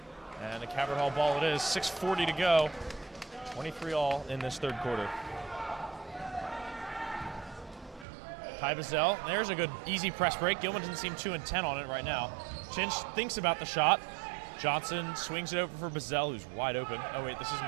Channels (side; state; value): left; drops out; at 8.1 s